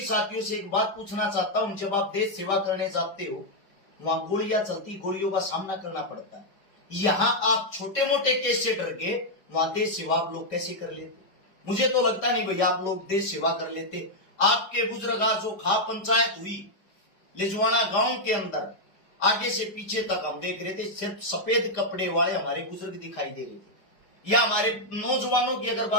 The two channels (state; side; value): late; right; 5.1 ms